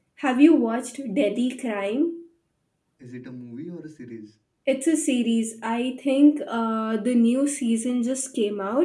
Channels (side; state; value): both; identical; correlation 1.00